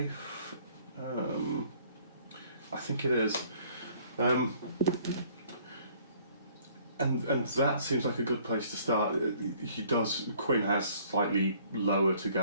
I think it is. And that seems like a good place to start. Quinn has slightly lower to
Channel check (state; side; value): inverted; both; correlation -0.59